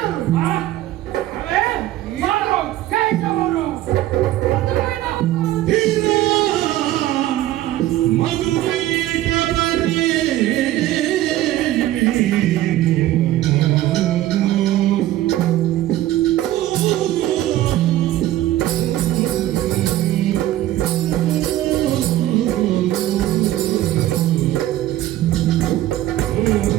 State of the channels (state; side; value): quieter; left; 14.4 dB